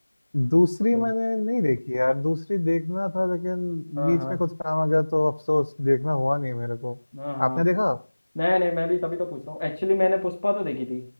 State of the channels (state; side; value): inverted; both; correlation -1.00